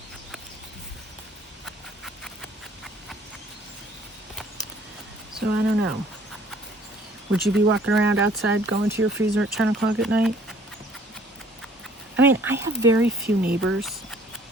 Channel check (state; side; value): normal; both; correlation 0.57